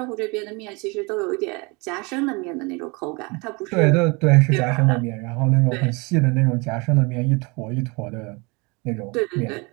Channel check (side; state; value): left; quieter; 28.3 dB